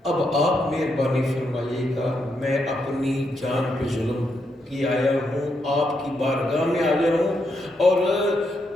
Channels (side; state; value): both; normal; correlation 0.80